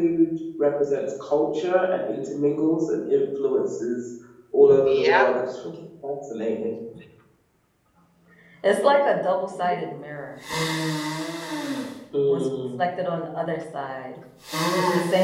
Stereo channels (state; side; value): identical; both; correlation 1.00